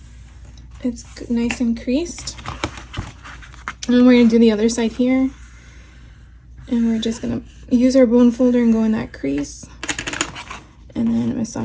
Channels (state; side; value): identical; both; correlation 1.00